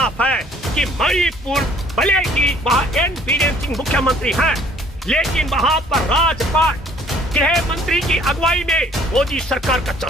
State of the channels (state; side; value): normal; both; correlation 0.58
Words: है कि मणिपुर भले ही वहाँ एन बीरेन सिंह मुख्यमंत्री हैं, लेकिन वहाँ पर राजपाट गृह मंत्री की अगुवाई में मोदी सरकार का